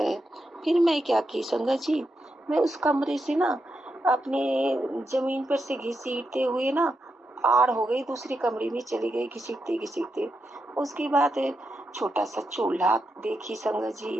फिर मैं क्या की संगत जी, मैं उस कमरे से ना अपने जमीन पर से घसीटते हुए ना आड़ हो गई, दूसरे कमरे में चली गई घसीटते घसीटते। उसके बाद छोटा सा चूल्हा देखी संगत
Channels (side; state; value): both; normal; correlation 0.85